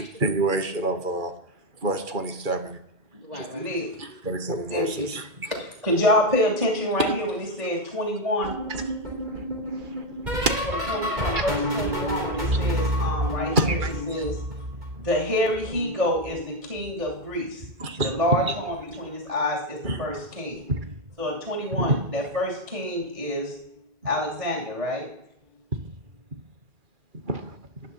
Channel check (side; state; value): left; late; 2.3 ms